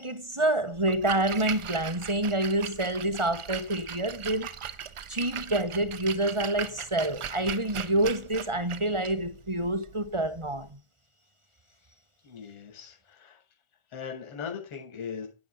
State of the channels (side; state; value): left; late; 1.4 ms